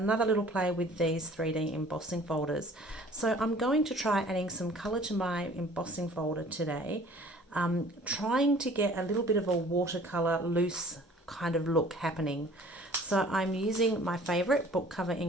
little play with these 3D embossing folders. So I'm going to try adding some color to my embossing folder today, trying to get a little bit of a watercolor loose kind of look happening. So I'm using my favorite book cover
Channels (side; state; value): both; normal; correlation 0.50